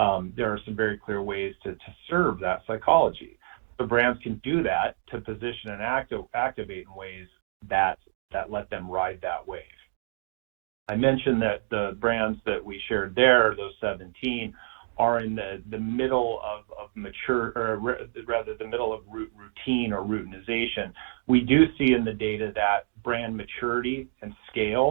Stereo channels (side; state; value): left; silent; digital silence